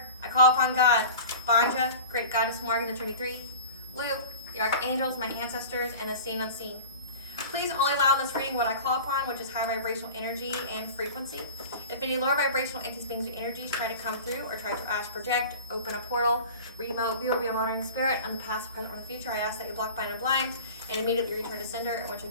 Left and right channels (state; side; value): inverted; both; correlation -0.37